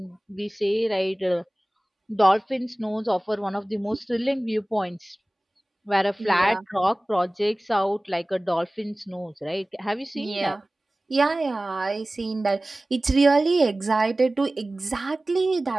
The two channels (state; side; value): normal; both; correlation 0.98